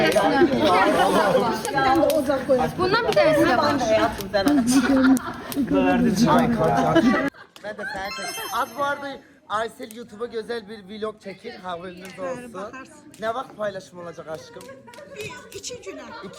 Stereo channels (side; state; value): both; identical; correlation 1.00